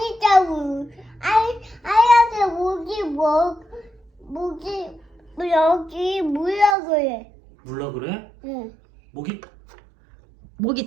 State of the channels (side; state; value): left; drops out; at 6.8 s